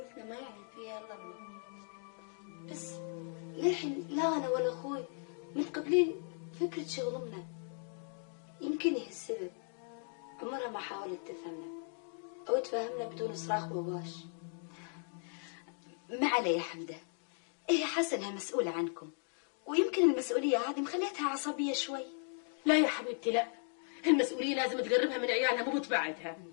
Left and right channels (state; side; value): silent; right; 53 dB below the other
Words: ما يعلم فيها الا الله، بس للحين لا انا ولا اخوي متقبلين فكره شغل امنا. يمكن هي السبب، عمرها ما حاولت تفهمنا او تفهمنا بدون صراخ وواش. ما علي يا حمده، هي حاسه انها مسؤوله عنكم، ويمكن المسؤوليه هذه مخليتها عصبيه شوي. لا يا حبيبتي لا، المسؤوليه لازم تقربها من عيالها مو تبعدها.